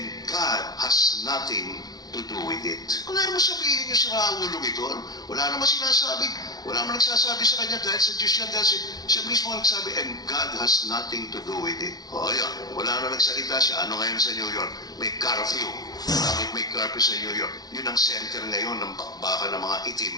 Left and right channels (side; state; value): right; late; 0.19 ms